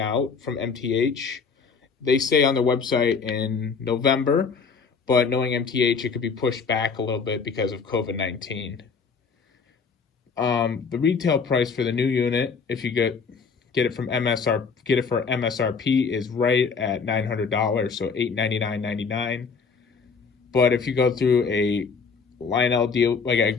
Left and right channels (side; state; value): right; quieter; 5.4 dB